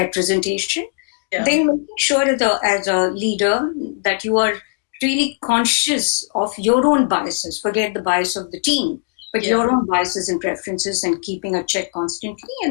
Yeah. Then making sure as a leader that you are really conscious of your own biases. Forget the bias of the team, but your own biases and preferences, and keeping a check constantly.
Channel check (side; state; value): right; silent; 66 dB below the other